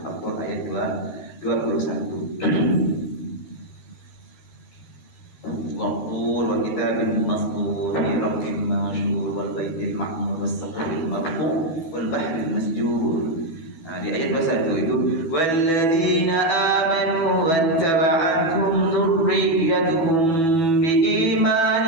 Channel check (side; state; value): right; late; 12 ms